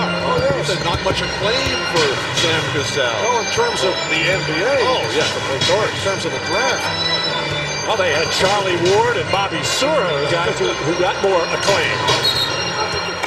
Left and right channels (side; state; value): both; identical; correlation 1.00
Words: Oh, yes. You said not much acclaim for Sam Cassell. No, in terms of the NBA. Oh, yeah, of course. In terms of the draft. Well, they had Charlie Ward and Bobby Sura, guys who got more acclaim.